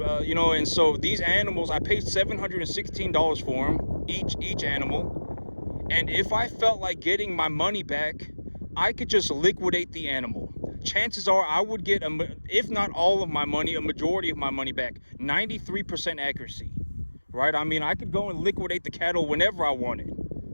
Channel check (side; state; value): both; inverted; correlation -1.00